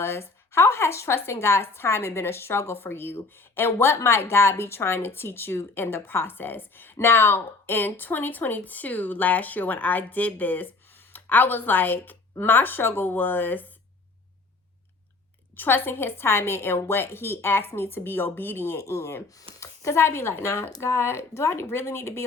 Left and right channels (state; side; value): quieter; right; 3.7 dB